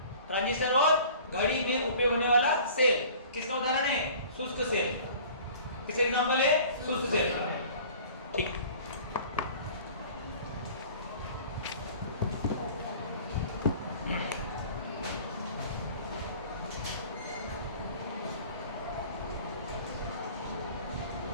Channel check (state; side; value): inverted; both; correlation -0.46